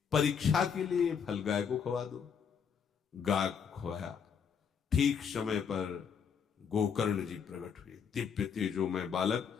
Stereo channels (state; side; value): quieter; right; 7.0 dB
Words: परीक्षा के लिए फल गाय को खवा दो, गाय को खवाया। ठीक समय पर गोकर्ण जी प्रकट हुए, दिव्य तेजोमय बालक,